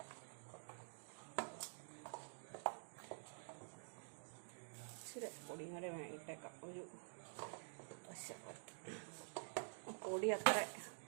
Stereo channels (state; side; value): silent; left; digital silence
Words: ഇച്ചിരി പൊടിയും കൂടെ ഇട്ടേക്കാം, ഒരു വശപ്പുറത്ത്. പൊടി അത്ര